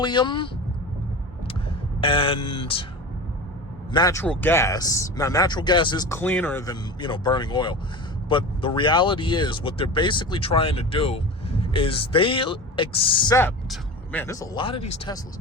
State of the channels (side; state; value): both; normal; correlation 0.31